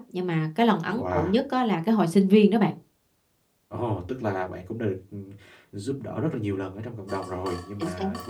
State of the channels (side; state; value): both; identical; correlation 1.00